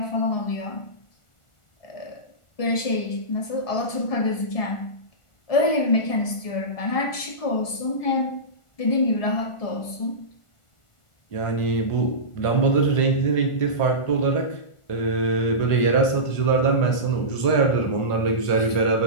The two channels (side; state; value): right; late; 1.4 ms